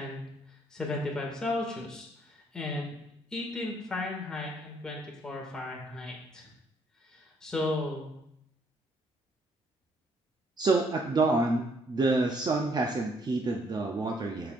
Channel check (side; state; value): both; normal; correlation 0.68